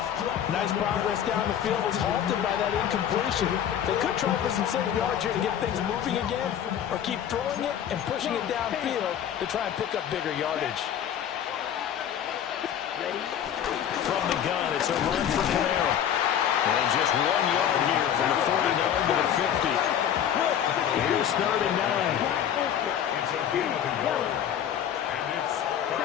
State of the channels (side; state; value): right; quieter; 9.6 dB